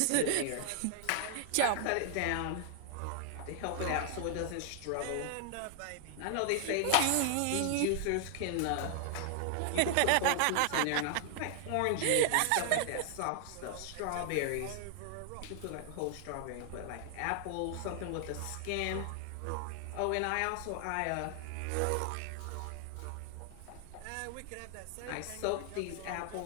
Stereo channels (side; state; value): both; different; correlation 0.00